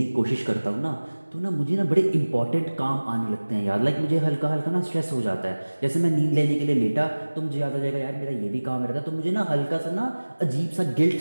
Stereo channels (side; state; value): both; inverted; correlation -1.00